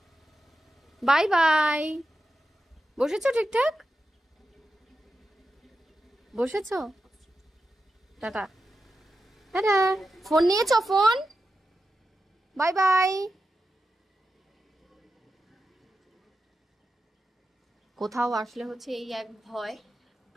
By bye. বসেছো ঠিকঠাক? বসেছো? টাটা। টাটা। ফোন নিয়েছো? ফোন। Bye bye. কোথাও আসলে হচ্ছে এই এক ভয়,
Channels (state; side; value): normal; both; correlation 0.90